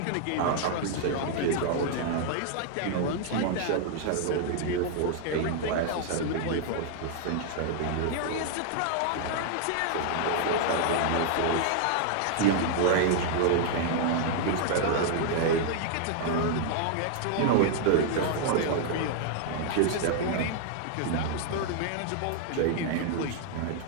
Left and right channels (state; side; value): different; both; correlation 0.00